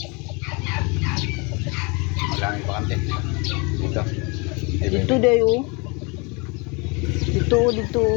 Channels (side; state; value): right; quieter; 30.0 dB